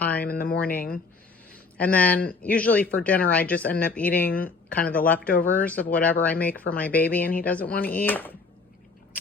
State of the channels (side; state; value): right; quieter; 4.2 dB